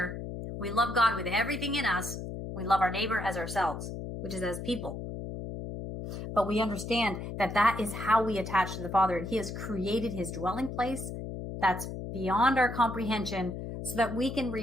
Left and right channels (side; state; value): left; noise; hum, 7 dB below the sound